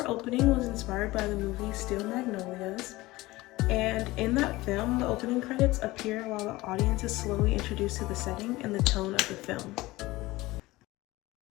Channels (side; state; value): right; quieter; 19.5 dB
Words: opening was inspired by the movie Steel Magnolias, and in that film, the opening credits appear while the audience is slowly introduced to the setting and the tone of the film.